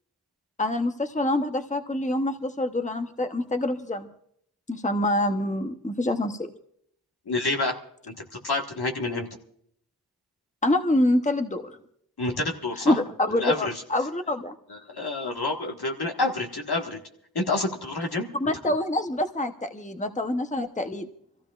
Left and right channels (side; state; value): both; normal; correlation 0.45